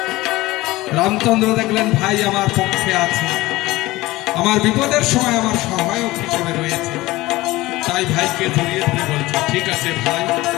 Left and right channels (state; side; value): quieter; right; 19.0 dB